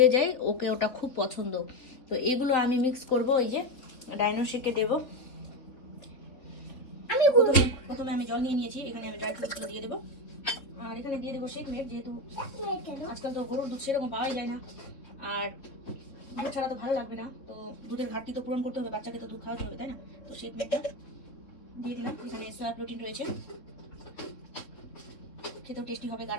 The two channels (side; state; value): right; late; 3.8 ms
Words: যায়, ওকে ওটা খুব পছন্দ। তো এগুলো আমি মিক্স করব, এই যে ডাইনো শেকে দেবো। আমি প্রথমে আমি জল নিয়ে নিয়েছি, এখানে আমি ড্রাই ফ্রুটসগুলো দিয়ে দেবো। আর এখানে দিয়ে দেবো শেক মেড, যেহেতু আজকাল তো গরুর দুধ সেরকম পাওয়াই যায় না, আর দুধ ছাড়া তো ভালো লাগবে না। তো দুধের ঘাটতি তো পূরণ করতে হবে, বাচ্চাকে তো দুধ খাওয়াতে হবে, তাই না? তো শেক মেডটা দিয়ে দিলাম। এখানে সোয়া প্রোটিন রয়েছে, খেতেও টেস্টি হবে,